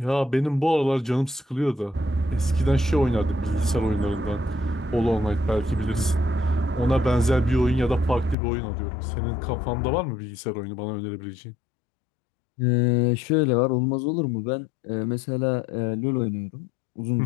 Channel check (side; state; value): right; drops out; at 8.3 s